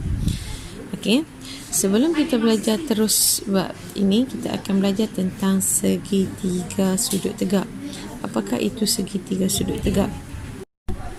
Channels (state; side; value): identical; both; correlation 1.00